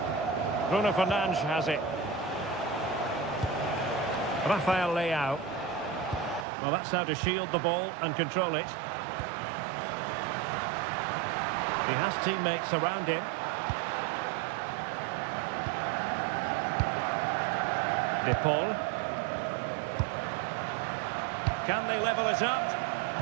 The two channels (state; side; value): drops out; left; at 6.5 s